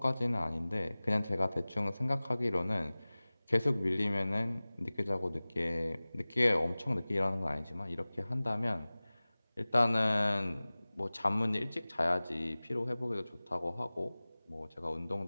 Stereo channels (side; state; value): both; inverted; correlation -0.99